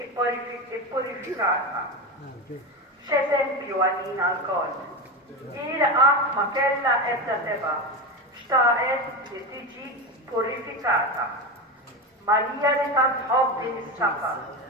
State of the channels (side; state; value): both; normal; correlation 0.19